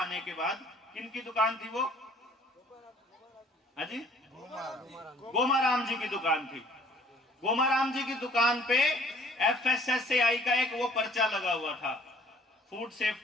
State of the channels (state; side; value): normal; both; correlation 0.57